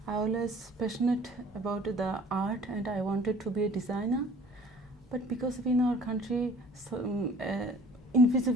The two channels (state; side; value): normal; both; correlation 0.51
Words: I always passionate about the art, and I wanted to be a designer. But because in our country,